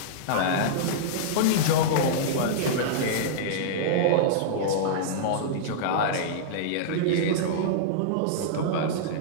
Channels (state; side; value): different; both; correlation -0.02